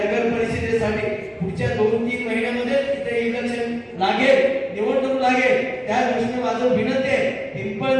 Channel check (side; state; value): both; identical; correlation 1.00